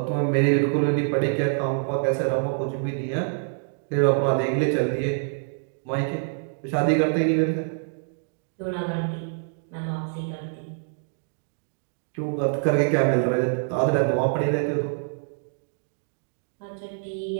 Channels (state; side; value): silent; left; digital silence